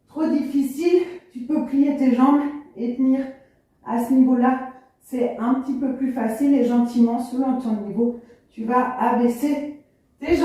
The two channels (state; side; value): identical; both; correlation 1.00